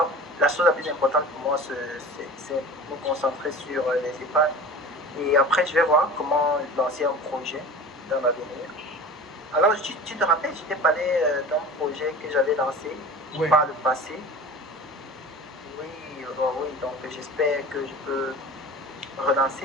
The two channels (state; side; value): normal; both; correlation 0.36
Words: la chose la plus importante pour moi, c'est me concentrer sur les épargnes. Et après, je vais voir comment lancer un projet dans l'avenir. Alors, tu te rappelles, je t'ai parlé d'un projet que j'avais lancé Oui, par le passé. Oui, oui, donc j'espère que je peux